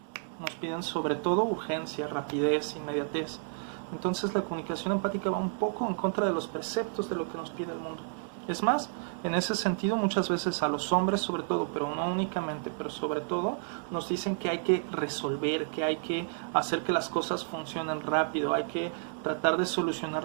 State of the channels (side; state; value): left; silent; digital silence